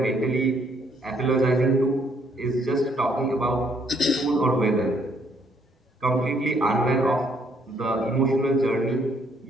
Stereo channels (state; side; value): normal; both; correlation 0.68